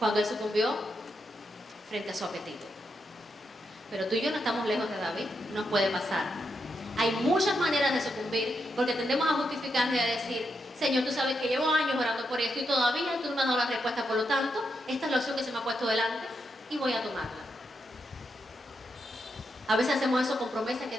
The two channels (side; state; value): both; normal; correlation 0.83